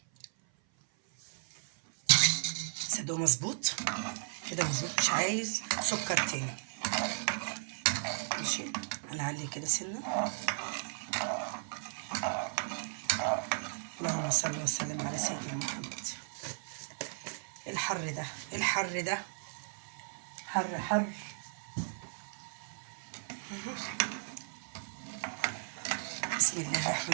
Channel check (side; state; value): left; silent; 54 dB below the other